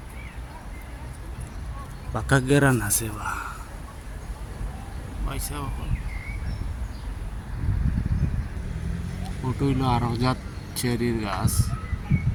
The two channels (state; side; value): identical; both; correlation 1.00